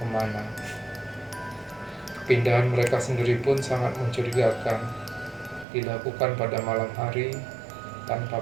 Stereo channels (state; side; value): drops out; left; at 5.7 s